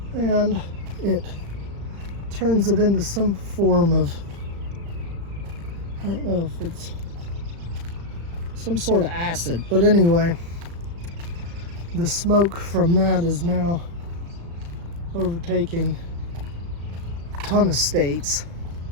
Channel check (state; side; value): late; left; 35 ms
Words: And it turns it into some form of, I don't know if it's some sort of acid, but anyway, the smoke from that is now overtaking a ton of states.